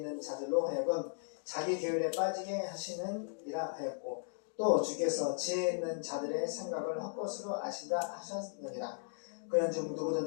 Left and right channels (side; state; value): right; silent; digital silence